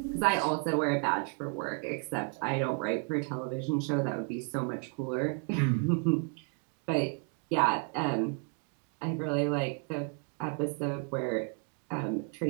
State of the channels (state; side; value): quieter; left; 38.8 dB